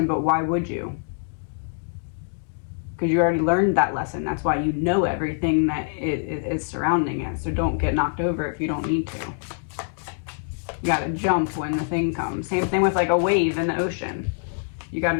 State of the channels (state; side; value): silent; right; 62 dB below the other